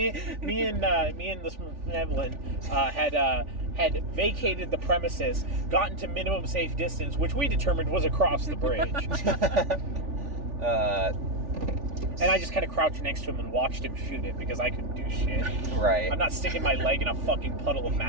and this Evelyn had vacated the premises, gotten to minimum safe distance, which we determined was across the bridge, and I just kind of crouched next to him and watched him shoot it because I couldn't do shit. Right. I'm not sticking my leg in a fucking puddle of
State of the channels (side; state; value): left; late; 3.4 ms